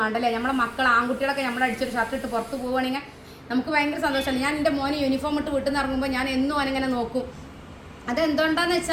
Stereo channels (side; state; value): both; identical; correlation 1.00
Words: വേണ്ടല്ലേ. നമ്മളെ മക്കൾ ആൺകുട്ടികളൊക്കെ നമ്മൾ അടിച്ചൊരു ഷർട്ട് ഇട്ട് പുറത്ത് പോവുകയാണെങ്കിൽ നമുക്ക് ഭയങ്കര സന്തോഷമല്ലേ. ഞാൻ എൻ്റെ മോനെ യൂണിഫോം ഇട്ട് വീട്ടിൽ നിന്ന് ഇറങ്ങുമ്പോൾ ഞാൻ എന്നും അവനിങ്ങനെ നോക്കും. അതെന്തുകൊണ്ടാന്ന്